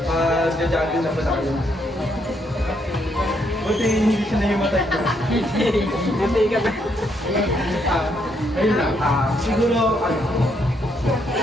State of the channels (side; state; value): both; normal; correlation 0.74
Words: mag-jogging na pala kayo. Buti hindi siya nahimatay ko. Hindi ka ba? Ayun lang. Siguro,